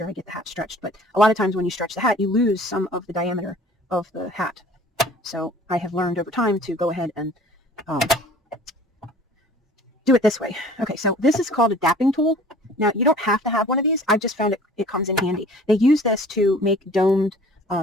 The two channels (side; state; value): both; normal; correlation 0.48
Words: I get the hat stretched. But a lot of times when you stretch the hat, you lose some of the diameter of the hat. So I have learned over time to go ahead and do it this way. Okay, so this is called a dapping tool. Now, you don't have to have one of these. I've just found it comes in handy. They use this to make domed